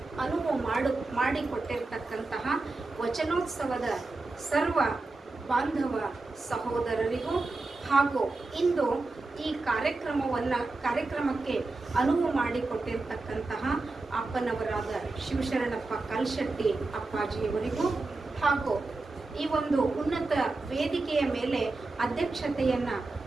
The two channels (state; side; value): quieter; left; 3.4 dB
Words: ಅನುವು ಮಾಡಿಕೊಟ್ಟಿರ್ತಕ್ಕಂತಹ ವಚನೋತ್ಸವದ ಸರ್ವ ಬಾಂಧವ ಸಹೋದರರಿಗೂ ಹಾಗೂ ಇಂದು ಈ ಕಾರ್ಯಕ್ರಮಕ್ಕೆ ಅನುವು ಮಾಡಿಕೊಟ್ಟಿರ್ತಕ್ಕಂತಹ ಅಪ್ಪನವರಾದ ಶಿವಶರಣಪ್ಪ ಕಲ್ಶೆಟ್ಟಿ ಅಪ್ಪಾಜಿಯವರಿಗೂ ಹಾಗೂ ಈ ಒಂದು ಉನ್ನತ ವೇದಿಕೆಯ ಮೇಲೆ ಅಧ್ಯಕ್ಷತೆಯನ್ನು